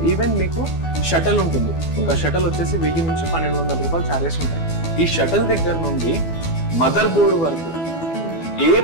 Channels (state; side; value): late; right; 12 ms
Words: ఈవెన్ మీకు షటల్ ఉంటుంది. ఒక షటల్ వచ్చేసి 1000 నుంచి 1200 రూపాయలు చార్జెస్ ఉంటాయి. ఈ షటల్ దగ్గర నుండి మదర్ బోర్డు వరకు ఏ